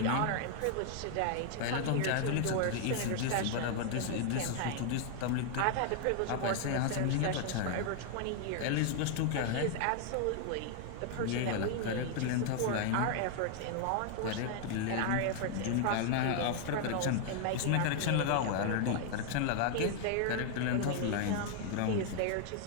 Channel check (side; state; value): both; different; correlation 0.00